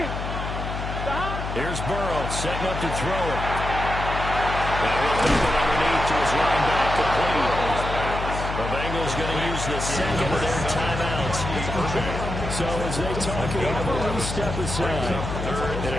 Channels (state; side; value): noise; left; hum, 5 dB below the sound